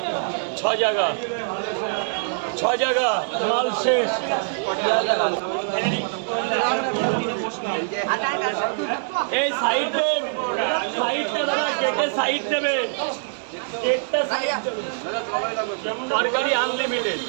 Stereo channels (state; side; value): silent; left; digital silence